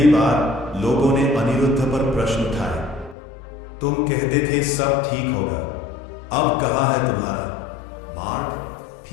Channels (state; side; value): drops out; right; at 3.2 s